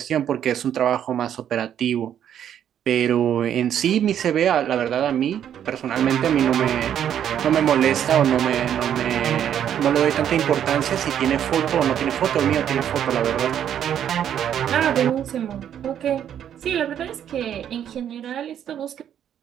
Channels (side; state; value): left; quieter; 9.7 dB